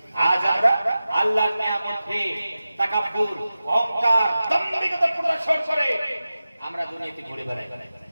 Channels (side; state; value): both; inverted; correlation -0.94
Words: আজ আমরা আল্লাহর নিয়ামত পেয়ে তাকাব্বুর, অহংকার, দাম্ভিকতা প্রদর্শন করে আমরা দুনিয়াতে ঘুরে বেড়াই।